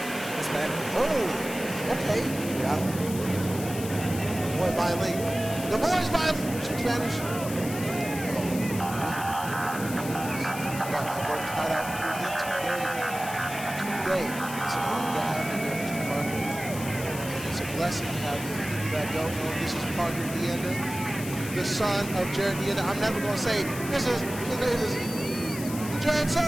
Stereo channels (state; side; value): noise; left; hiss, 11 dB below the sound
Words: Hispanic. Oh, okay. Yeah. Boy, bilingual. The boy's bilingual. Speak Spanish. Got my work cut out for me today. It's an honor to have you here, Mr. Parker. It's a blessing to have you. For people that don't know, this is Parker Deanda, the son of Jared Deanda. I'm never going to say, this is Jared's